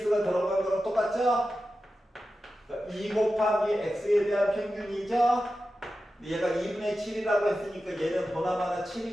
들어간 거랑 똑같죠? 그러니까 2 곱하기 x에 대한 평균이죠? 얘가 2분의 7이라고 했으니까 얘는 보나마나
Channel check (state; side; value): normal; both; correlation 0.92